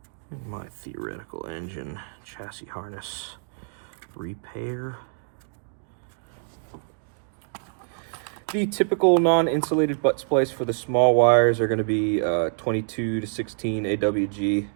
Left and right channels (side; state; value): left; silent; digital silence